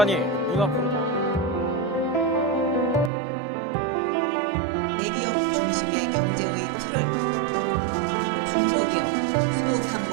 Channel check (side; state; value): left; drops out; at 3.1 s